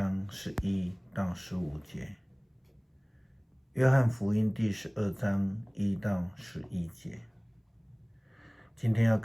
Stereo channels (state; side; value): identical; both; correlation 1.00